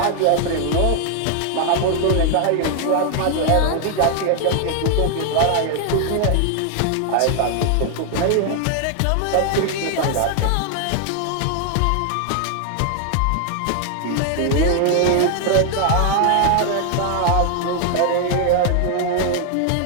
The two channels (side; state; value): both; different; correlation 0.00